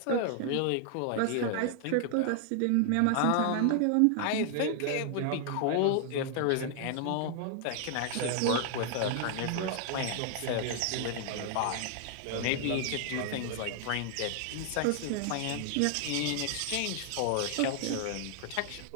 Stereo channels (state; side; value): different; both; correlation 0.00